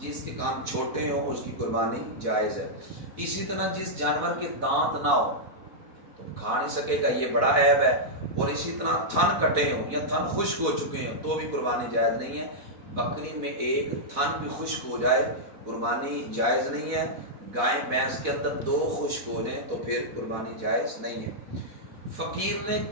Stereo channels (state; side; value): late; left; 4.1 ms